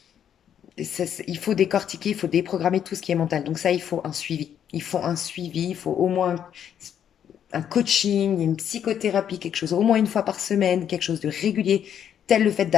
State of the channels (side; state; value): right; quieter; 9.2 dB